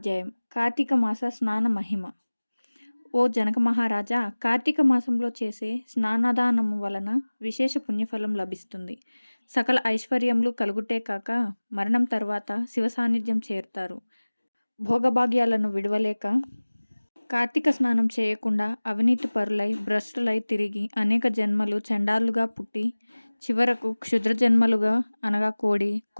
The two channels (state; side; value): inverted; both; correlation -1.00